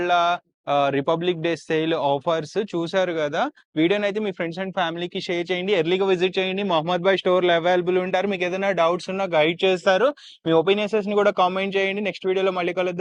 రిపబ్లిక్ డే సేల్ ఆఫర్స్ చూసారు కదా. వీడియోని అయితే మీ ఫ్రెండ్స్ అండ్ ఫ్యామిలీకి షేర్ చేయండి. ఎర్లీగా విజిట్ చేయండి. మహమ్మద్ భాయ్ స్టోర్ లో అవైలబుల్ ఉంటారు. మీకు ఏదైనా డౌట్స్ ఉన్నా గైడ్ చేస్తారు. మీ ఒపీనియన్స్ ని కూడా కామెంట్ చేయండి. నెక్స్ట్ వీడియోలో మళ్ళీ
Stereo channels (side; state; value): both; identical; correlation 1.00